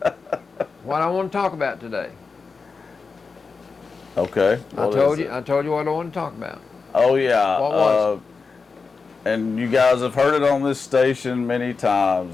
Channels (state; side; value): quieter; right; 4.7 dB